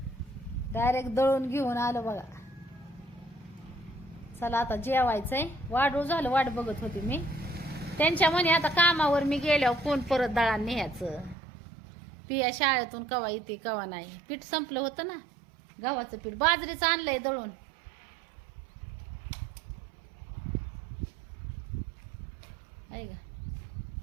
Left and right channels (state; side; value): drops out; left; at 11.4 s